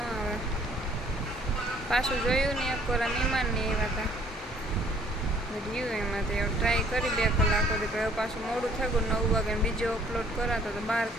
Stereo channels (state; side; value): normal; both; correlation 0.59